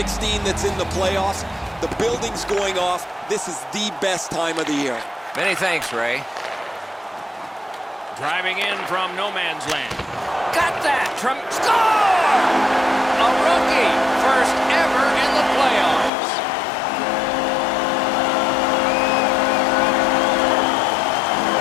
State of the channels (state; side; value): drops out; right; at 16.1 s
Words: that's in the playoffs. The building's going off. This is the best time of the year. Many thanks, Ray. Driving in from no man's land. Got that. Score! A rookie. First ever in the playoffs.